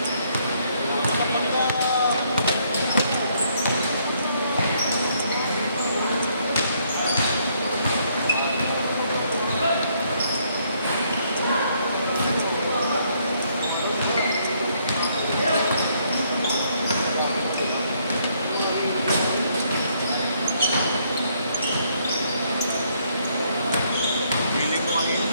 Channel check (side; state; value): both; inverted; correlation -0.70